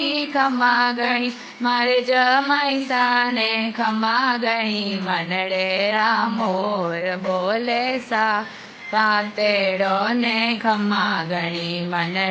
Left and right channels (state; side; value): identical; both; correlation 1.00